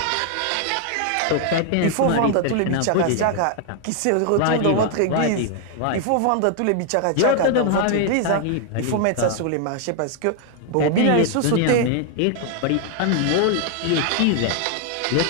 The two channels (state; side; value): different; both; correlation 0.00